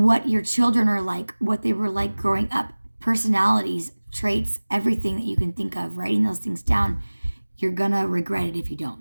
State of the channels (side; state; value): both; inverted; correlation -1.00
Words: your children are like, what they were like growing up, personalities, traits, everything that you can think of, writing those things down. You're gonna regret it if you